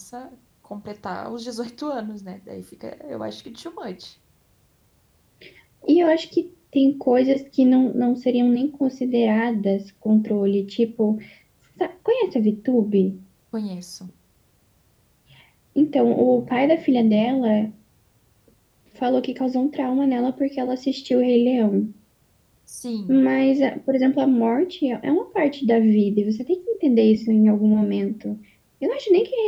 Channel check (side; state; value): both; identical; correlation 1.00